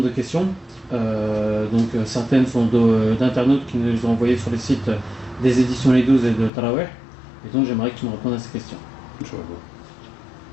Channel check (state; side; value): drops out; right; at 6.5 s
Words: de questions. Certaines sont d'internautes qui nous ont envoyé sur les sites des éditions Les 12 et de Taraweh. Et donc j'aimerais que tu me répondes à ces questions. Inch'Allah.